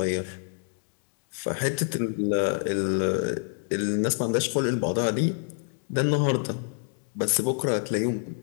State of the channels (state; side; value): silent; right; 59 dB below the other